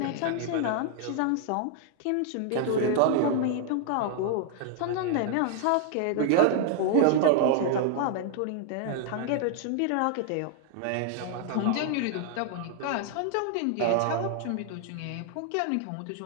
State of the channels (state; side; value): different; both; correlation 0.00